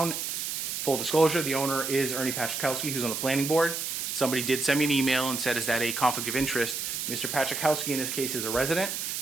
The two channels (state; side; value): noise; right; hiss, 3 dB below the sound